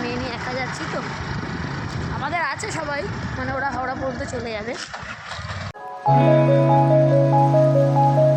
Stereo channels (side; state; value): both; identical; correlation 1.00